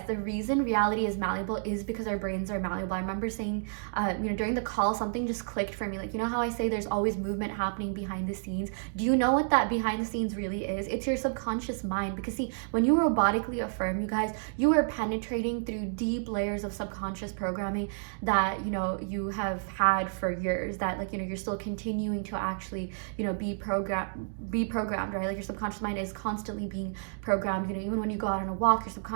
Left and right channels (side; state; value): left; silent; digital silence